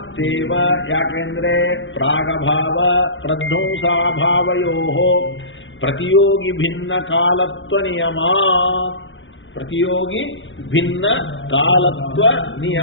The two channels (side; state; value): right; late; 0.56 ms